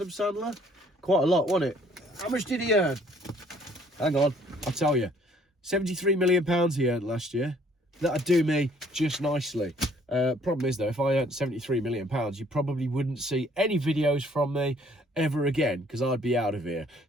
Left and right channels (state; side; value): normal; both; correlation 0.61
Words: Sandler? Quite a lot, wasn't it? How much did he earn? Hang on, I'll tell you. £73 million he earned last year. That'd do me just nicely. Problem is though, if I earned £73 million, you probably wouldn't see any videos from me ever again, because I'd be out of here.